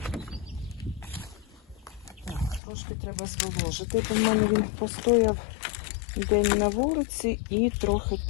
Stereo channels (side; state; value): right; drops out; at 2.6 s